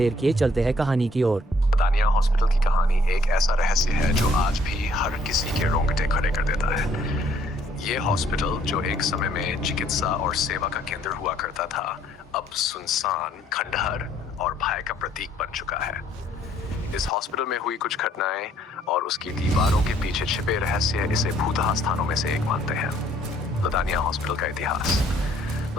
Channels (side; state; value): both; normal; correlation 0.64